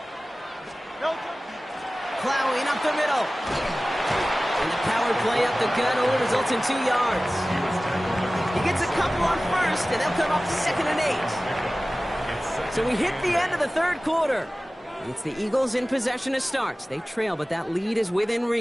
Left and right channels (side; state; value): both; normal; correlation 0.97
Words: Plowing up the middle. And the power play up the gut only results in 2 yards. He gets a couple on first, and they'll come up second and 8. So we hit the end of the third quarter. It's the Eagles in possession to start. They trail, but that lead is within